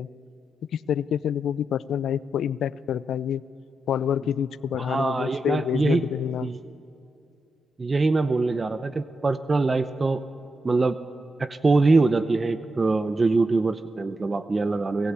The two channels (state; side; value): normal; both; correlation 0.85